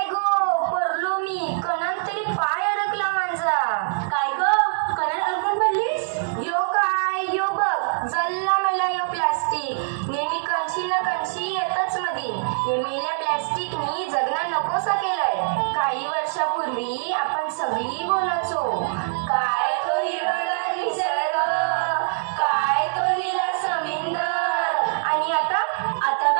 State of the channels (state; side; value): silent; left; digital silence